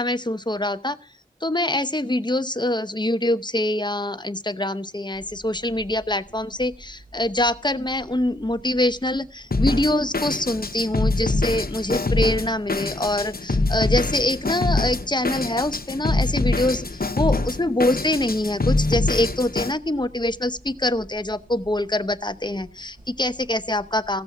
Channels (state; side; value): normal; both; correlation 0.68